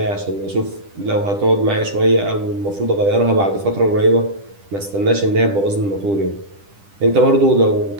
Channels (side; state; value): left; late; 10 ms